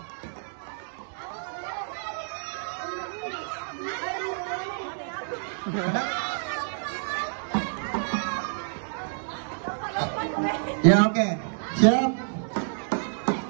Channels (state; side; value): silent; left; 59 dB below the other